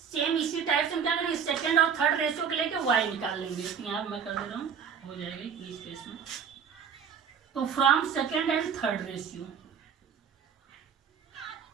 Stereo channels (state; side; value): quieter; left; 7.2 dB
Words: इसी टाइप से हम क्या करेंगे, सेकंड और थर्ड रेशियो के लेके y निकाल लेंगे। तो यहाँ मैं कर दे रहा हूँ, हो जाएगा इस केस में। तो from second and third ratio,